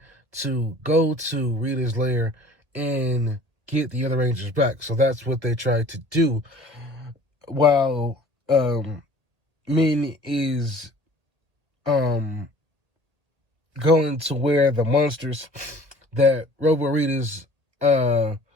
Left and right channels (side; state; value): left; late; 1.6 ms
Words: to go to Rita's lair and get the other Rangers back. So that's what they tried to do. While Min is going to where the monsters that Robo Rita's